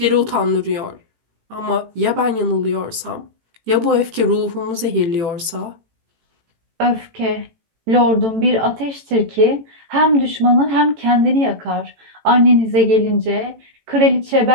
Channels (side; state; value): left; late; 18 ms